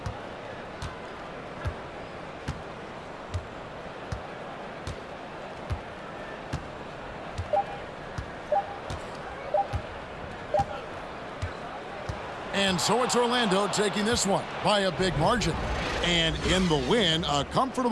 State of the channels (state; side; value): identical; both; correlation 1.00